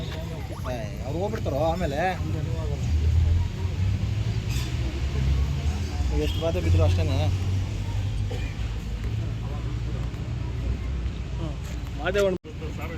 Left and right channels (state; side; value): identical; both; correlation 1.00